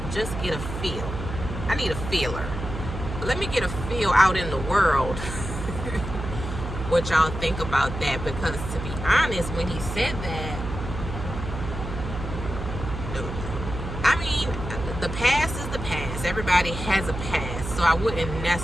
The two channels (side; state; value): right; noise; hum, 7 dB below the sound